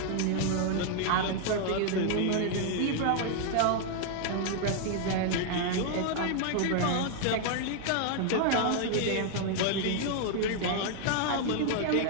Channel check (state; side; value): different; both; correlation 0.00